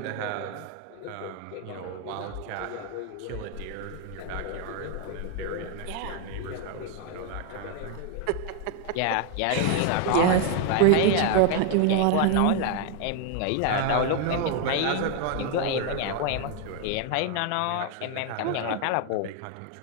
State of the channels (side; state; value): both; different; correlation 0.00